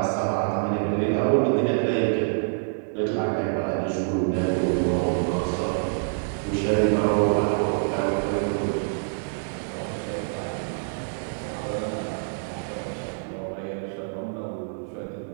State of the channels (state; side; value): silent; left; digital silence